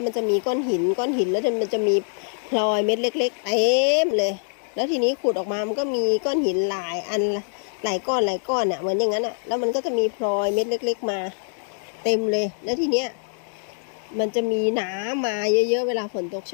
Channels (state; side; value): silent; right; digital silence